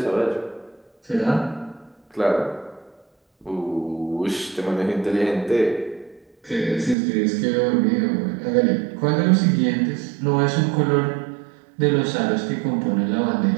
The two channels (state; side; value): drops out; left; at 7.0 s